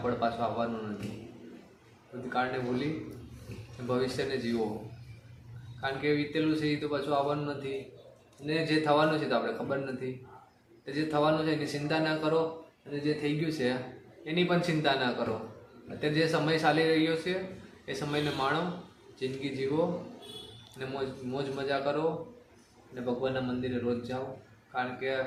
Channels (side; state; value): both; identical; correlation 1.00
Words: પળ પાછું આવવાનું નથી. ભૂતકાળને ભૂલી ભવિષ્યને જીવો, કારણ કે વીતેલું છે એ તો પાછું આવવાનું નથી. અને જે થવાનું છે તો આપણે ખબર નથી. તો જે થવાનું છે એની ચિંતા ના કરો, અને જે થઈ ગયું છે એની પણ ચિંતા ના કરો. અત્યારે જે સમય ચાલી રહ્યો છે એ સમયને માણો, જિંદગી જીવો, અને મોજ મજા કરો, અને ભગવાનના મંદિરે રોજ જાઓ, કારણ કે